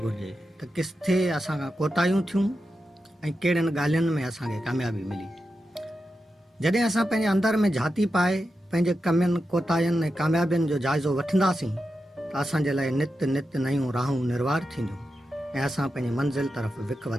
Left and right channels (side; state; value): both; normal; correlation 0.89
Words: घुरिजे त किथे असां खां कोताहियूं थियूं ऐं कहिड़ियुनि ॻाल्हियुनि में असांखे कामयाबी मिली। जॾहिं असां पंहिंजे अंदरि में झाती पाए पंहिंजे कमियुनि कोताहियुनि ऐं कामयाबियुनि जो जाइज़ो वठंदासीं त असांजे लाइ नित नित नयूं राहूं निर्वार थींदियूं ऐं असां पंहिंजी मंज़िल तरफ़ विख